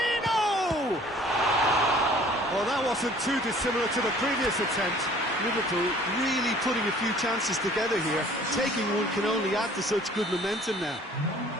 Well, that wasn't too dissimilar to the previous attempt. Liverpool really putting a few chances together here. Taking one can only add to such good momentum now.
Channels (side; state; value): both; normal; correlation 0.53